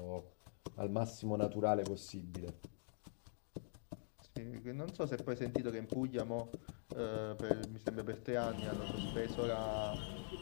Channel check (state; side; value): silent; right; digital silence